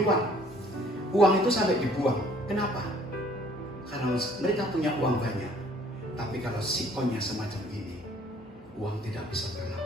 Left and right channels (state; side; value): normal; both; correlation 0.58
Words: Uang itu sampai dibuang. Kenapa? Karena mereka punya uang banyak. Tapi kalau sikonnya semacam ini, uang tidak bisa